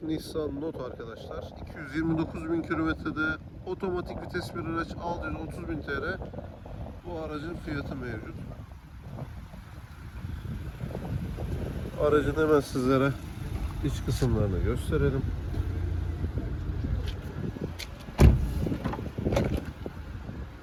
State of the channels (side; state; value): both; identical; correlation 1.00